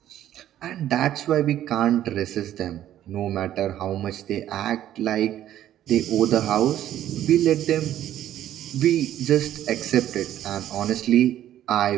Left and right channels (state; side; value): quieter; left; 12.0 dB